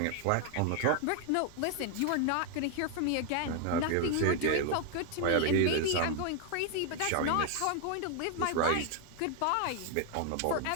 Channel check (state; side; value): different; both; correlation 0.00